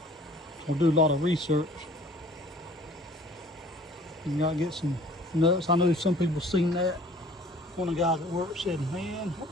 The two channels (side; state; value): both; normal; correlation 0.51